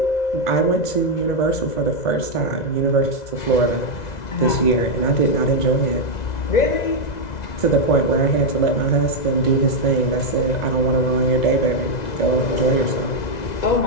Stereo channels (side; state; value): right; late; 2.0 ms